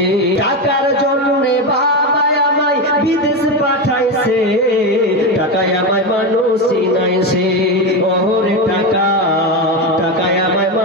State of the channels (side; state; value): both; normal; correlation 0.14